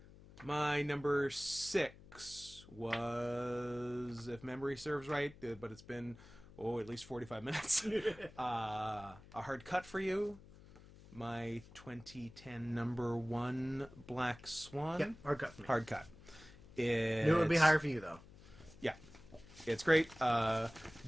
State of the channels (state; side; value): noise; left; hum, 20 dB below the sound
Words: My number 6 was, if memory serves right, but it's been, at least 45 minutes. A Hard Cut for You. My 2010 number 1, Black Swan. Yep. Hard cut for me. Hard Cut. Knew it would be higher for you, though. Yeah. It's great. Darren